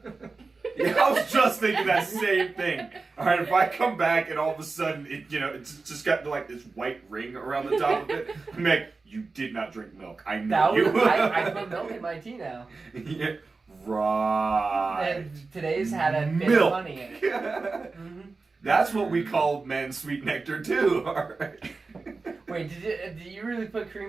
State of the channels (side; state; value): left; quieter; 4.0 dB